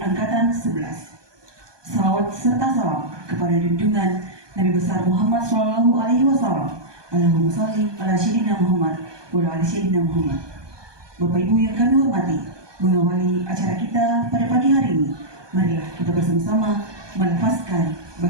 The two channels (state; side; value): late; left; 1.2 ms